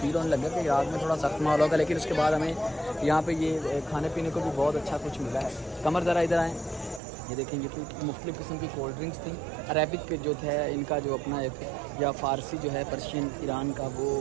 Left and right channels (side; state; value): left; drops out; at 7.0 s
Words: होने लगा कि इराक में थोड़ा सख्त माहौल होगा। लेकिन उसके बाद हमें यहाँ पे ये खाने पीने को भी बहुत अच्छा कुछ मिला है। कमर ज़रा इधर आएँ, ये देखेंगे कि मुख्तलिफ़ किस्म की कोल्ड ड्रिंक्स थी। अरेबिक जो है इनका जो अपना एक, या फ़ारसी जो है पर्शियन ईरान का, वो